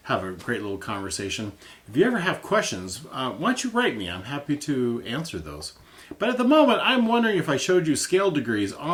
have a great little conversation. If you ever have questions, why don't you write me? I'm happy to answer those. But at the moment, I'm wondering if I showed you scale degrees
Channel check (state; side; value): identical; both; correlation 1.00